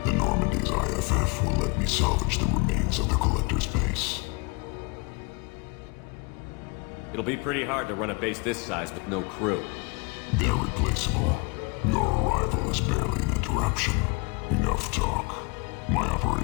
the Normandy's IFF will let me salvage the remains of the Collector's base. It'll be pretty hard to run a base this size with no crew. They're replaceable. Your arrival is barely an interruption. Enough talk. My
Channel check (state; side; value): quieter; right; 30.2 dB